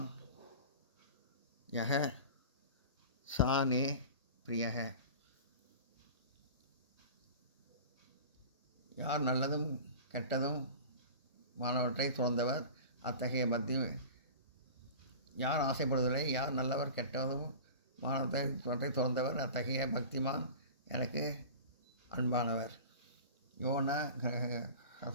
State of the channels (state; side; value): inverted; both; correlation -0.36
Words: யஹ சானே பிரியக. யார் நல்லதும் கெட்டதும் மாணவற்றை துறந்தவர் அத்தகைய பக்தி. யார் ஆசைப்படுவதில்லை, யார் நல்லவர் கெட்டதும் மாணவற்றை துறந்தவர் அத்தகைய பக்திமான் எனக்கு அன்பானவர். யோன